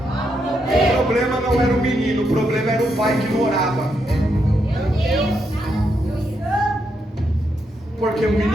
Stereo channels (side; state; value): both; normal; correlation 0.80